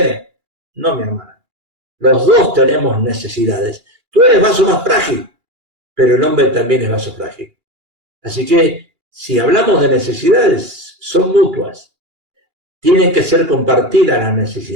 No, mi hermana. Los dos tenemos necesidades. Tú eres vaso más frágil, pero el hombre también es vaso frágil. Así que Si hablamos de necesidades, son mutuas. Tienen que ser compartidas las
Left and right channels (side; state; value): left; late; 2.3 ms